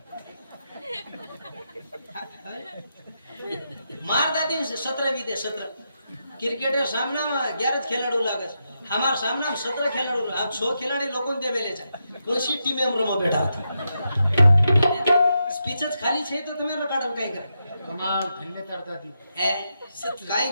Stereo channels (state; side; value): inverted; both; correlation -0.85